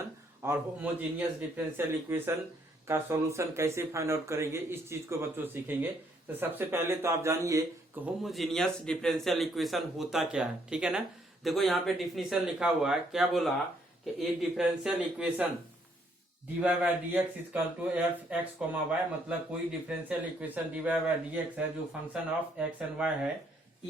और होमोजीनियस डिफरेंशियल इक्वेशन का सॉल्यूशन कैसे फाइंड आउट करेंगे, इस चीज को बच्चों सीखेंगे। तो सबसे पहले तो आप जानिए कि होमोजीनियस डिफरेंशियल इक्वेशन होता क्या है। ठीक है ना। देखो यहाँ पे डिफिनीशन लिखा हुआ है, क्या बोला कि a differential equation dy by dx equal to f x comma y, मतलब कोई differential equation dy by dx है जो function of x and y है,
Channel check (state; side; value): normal; both; correlation 0.69